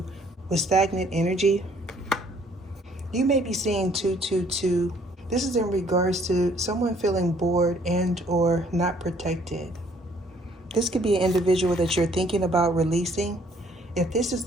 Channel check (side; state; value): both; normal; correlation 0.61